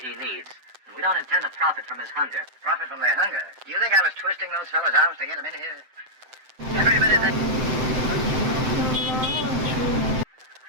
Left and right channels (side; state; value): left; late; 7.8 ms